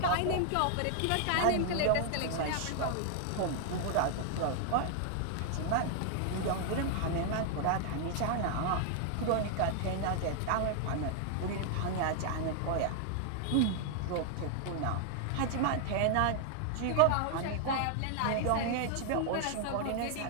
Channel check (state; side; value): different; both; correlation 0.00